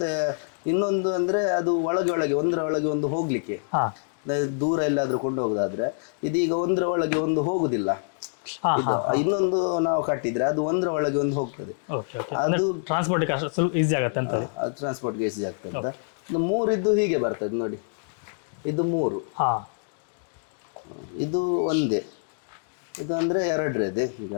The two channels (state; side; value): silent; right; digital silence